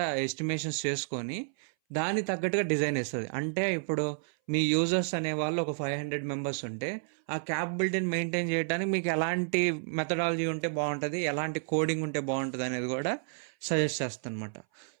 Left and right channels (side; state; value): left; silent; 57 dB below the other